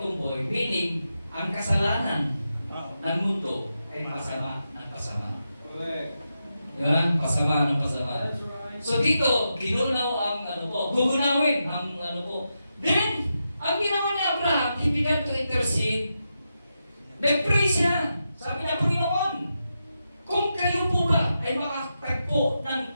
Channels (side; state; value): both; inverted; correlation -0.87